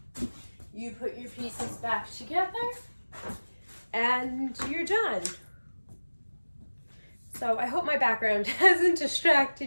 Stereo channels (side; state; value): both; inverted; correlation -1.00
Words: you put your pieces back together, and you're done. So I hope my background hasn't